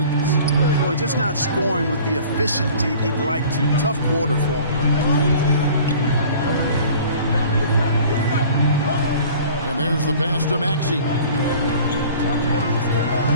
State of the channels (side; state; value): both; inverted; correlation -0.47